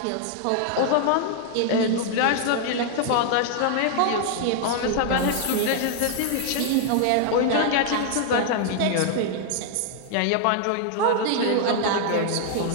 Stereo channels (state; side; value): different; both; correlation 0.00